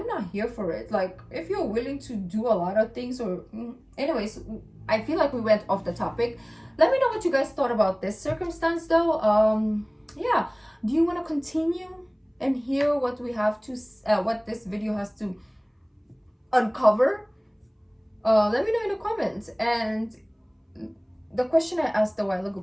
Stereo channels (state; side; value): identical; both; correlation 1.00